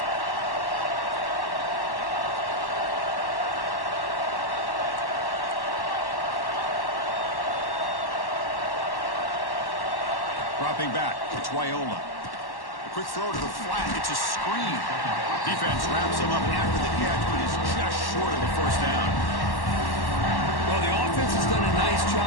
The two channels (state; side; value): late; right; 1.1 ms